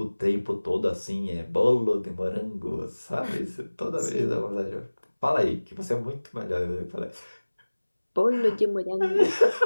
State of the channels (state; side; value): inverted; both; correlation -1.00